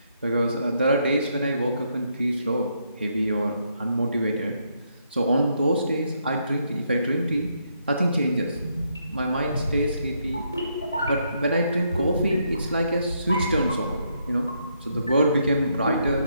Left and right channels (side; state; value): both; inverted; correlation -0.75